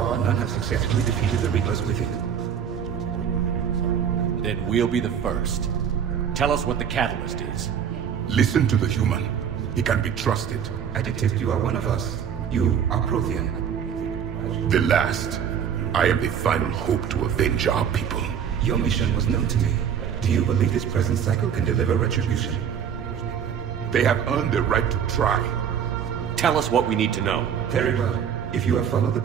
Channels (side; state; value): left; quieter; 8.2 dB